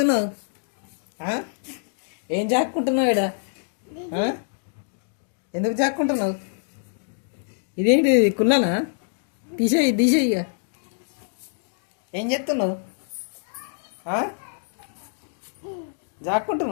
ఏం జాక్కుంటున్నావు ఈడ? ఎందుకు జాక్కుంటున్నావు? ఇదేంటి కుళ్ళనా? తీసేయి తీసేయి. ఇక ఏం చెప్తున్నావు?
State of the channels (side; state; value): right; silent; digital silence